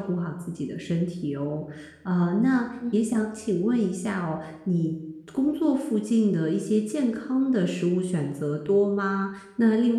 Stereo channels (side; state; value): both; identical; correlation 1.00